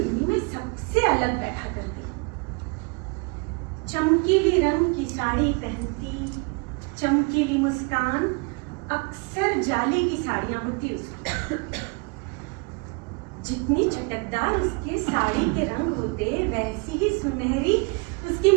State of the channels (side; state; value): left; quieter; 31.9 dB